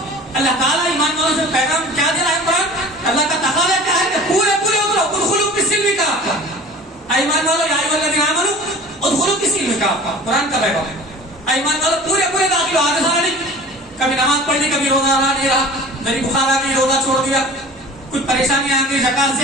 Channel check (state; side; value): normal; both; correlation 0.42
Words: اللہ تعالیٰ ایمان والوں سے پیغام کیا دے رہا ہے قرآن؟ اللہ کا تقاضا کیا ہے کہ پورے اترو، ادخلوا فی السلم کافہ. ایمان والوں یا ایھا الذین آمنوا ادخلوا فی السلم کافہ. قرآن کا پیغام ہے ایمان والوں پورے داخل ہو، آگے سارا نہیں. کبھی نماز پڑھ لی، کبھی روزہ رہا نہیں رہا، دری بخار آ گئی روزہ چھوڑ دیا، کچھ پریشانی آ گئی زکات